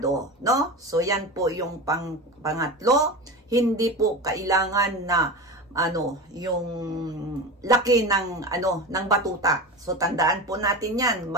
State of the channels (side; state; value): both; normal; correlation 0.27